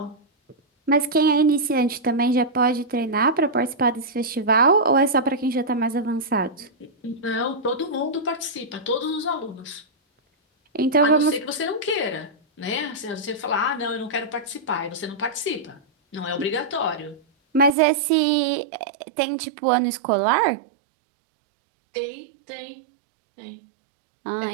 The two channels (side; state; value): left; drops out; at 17.8 s